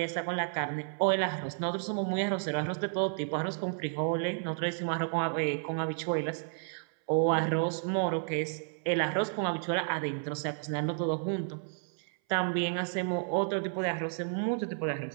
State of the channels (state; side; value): silent; left; 57 dB below the other